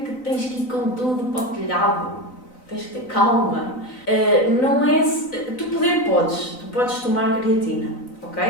tens que ir com tudo para o telhado. Tens que ter calma. Não é... Tu podes tomar creatina, ok?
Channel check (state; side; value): late; right; 3.9 ms